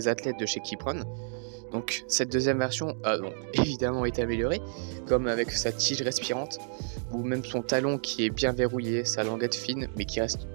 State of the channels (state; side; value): silent; left; digital silence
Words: athlètes de chez Kipron. Donc cette deuxième version a donc évidemment été améliorée, comme avec sa tige respirante, ou même son talon qui est bien verrouillé, sa languette fine, mais qui reste